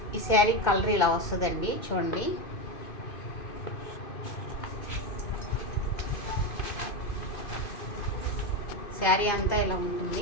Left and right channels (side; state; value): right; late; 2.5 ms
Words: ఈ శారీ కలర్ ఇలా వస్తుందండి. చూడండి, శారీ అంతా ఇలా